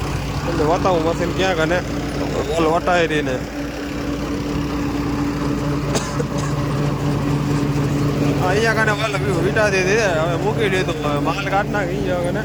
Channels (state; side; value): identical; both; correlation 1.00